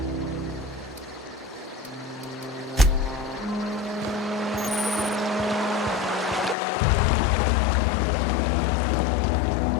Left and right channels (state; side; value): drops out; right; at 6.6 s